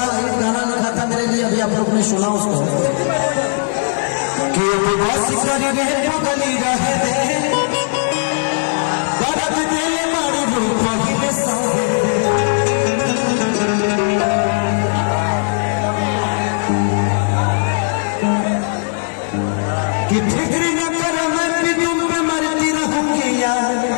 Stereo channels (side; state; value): right; silent; digital silence